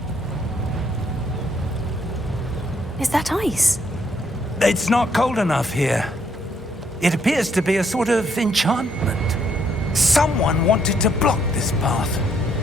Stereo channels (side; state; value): both; normal; correlation 0.70